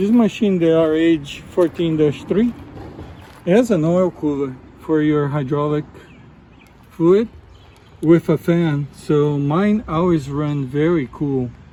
machine, the RH14-3, it has an oil cooler for your hydraulic fluid with a fan, so mine always run very cool.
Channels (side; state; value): both; identical; correlation 1.00